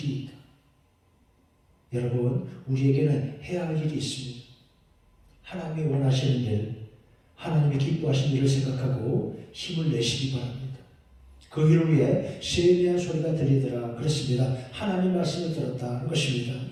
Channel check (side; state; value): both; identical; correlation 1.00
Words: 있다. 여러분, 우리에게는 해야 할 일이 있습니다. 하나님이 원하시는 일, 하나님이 기뻐하시는 일을 생각하고 힘을 내시기 바랍니다. 그 일을 위해 세미한 소리가 들리더라 그랬습니다. 하나님 말씀을 들었다는 것입니다.